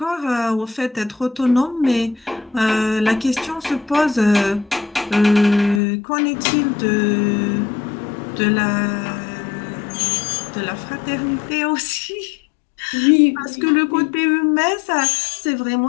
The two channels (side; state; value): right; drops out; at 5.8 s